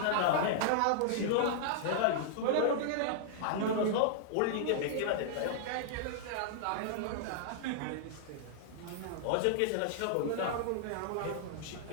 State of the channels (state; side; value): different; both; correlation -0.01